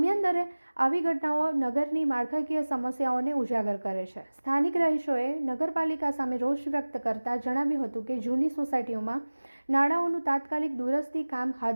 આવી ઘટનાઓ નગરની માળખાકીય સમસ્યાઓને ઉજાગર કરે છે। સ્થાનિક રહીશોએ નગરપાલિકા સામે રોષ વ્યક્ત કરતા જણાવ્યું હતું કે જૂની સોસાયટીઓમાં નાળાઓનું તાત્કાલિક દુરસ્તી કામ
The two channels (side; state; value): both; inverted; correlation -1.00